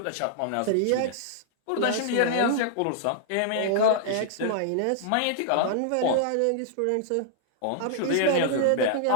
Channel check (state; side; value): different; both; correlation -0.01